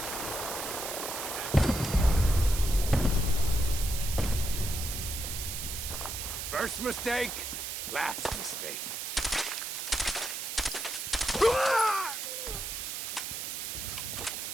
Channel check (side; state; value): right; noise; hiss, 5 dB below the sound